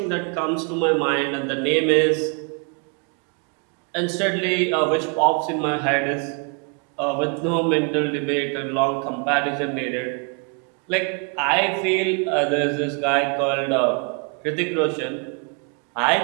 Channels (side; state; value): left; quieter; 36.9 dB